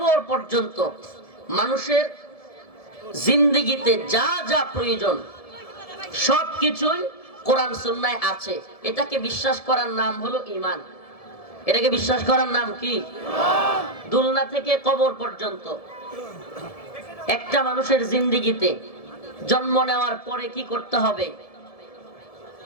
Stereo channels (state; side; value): late; right; 1.7 ms